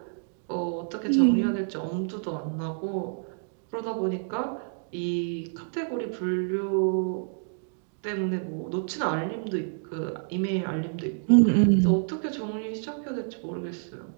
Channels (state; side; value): silent; left; digital silence